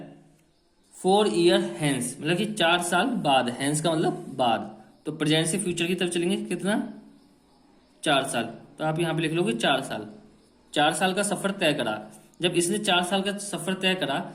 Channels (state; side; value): identical; both; correlation 1.00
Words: 4 ईयर हैंस, मतलब कि 4 साल बाद, हैंस का मतलब बाद, तो प्रेजेंट से फ्यूचर की तरफ चलेंगे, कितना, 4 साल, तो आप यहाँ पे लिख लोगे 4 साल। 4 साल का सफर तय करा, जब इसने 4 साल का सफर तय करा